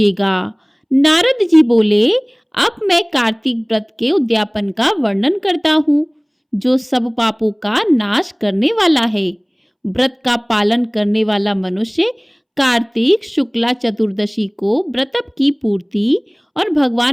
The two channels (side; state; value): both; identical; correlation 1.00